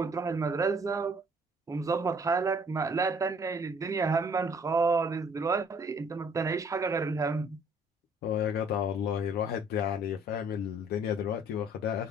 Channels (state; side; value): normal; both; correlation 0.58